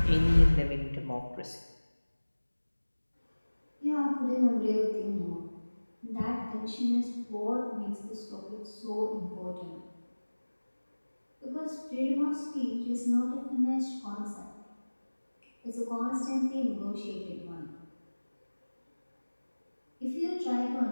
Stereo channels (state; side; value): inverted; both; correlation -1.00